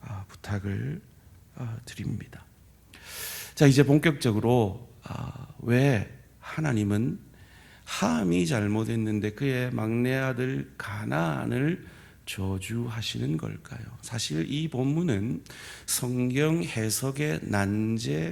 부탁을 드립니다. 자, 이제 본격적으로 왜 하나님은 함이 잘못했는데 그의 막내 아들 가나안을 저주하시는 걸까요? 사실 이 본문은 성경 해석의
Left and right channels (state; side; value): identical; both; correlation 1.00